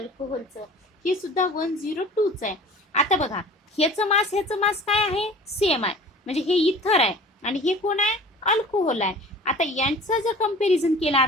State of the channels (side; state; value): both; normal; correlation 0.44